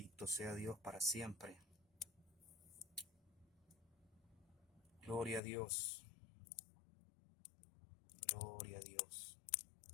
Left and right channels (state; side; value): drops out; right; at 5.4 s